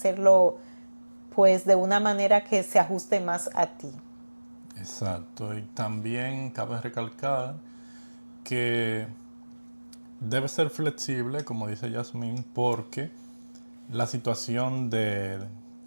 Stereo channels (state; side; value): inverted; both; correlation -1.00